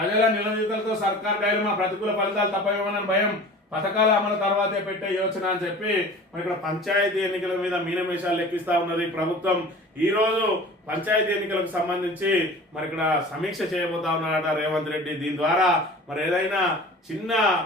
నిలదీతలతో సర్కార్ డైలమా, ప్రతికూల ఫలితాలు తప్పవేమోనని భయం, పథకాల అమలు తర్వాతే పెట్టే యోచన అని చెప్పి మరి ఇక్కడ పంచాయతీ ఎన్నికల మీద మీనమేషాలు లెక్కిస్తా ఉన్నది ప్రభుత్వం. ఈ రోజు పంచాయతీ ఎన్నికలకు సంబంధించి మరి ఇక్కడ సమీక్ష చేయబోతా ఉన్నాడట రేవంత్ రెడ్డి. దీని ద్వారా మరి ఏదైనా చిన్న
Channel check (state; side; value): normal; both; correlation 0.41